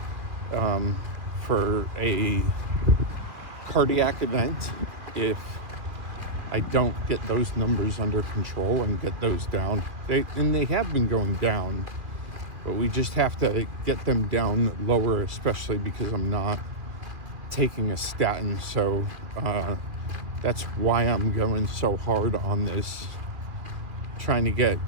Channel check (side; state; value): left; late; 2.5 ms